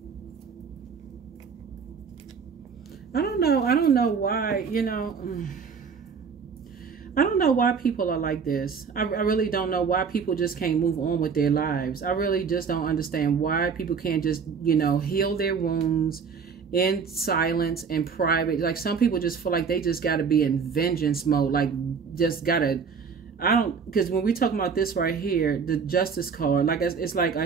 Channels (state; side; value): quieter; left; 6.0 dB